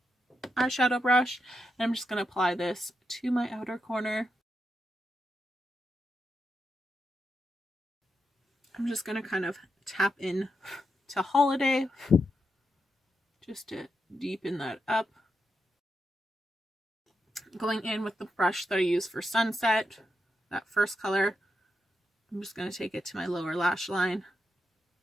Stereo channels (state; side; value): normal; both; correlation 0.85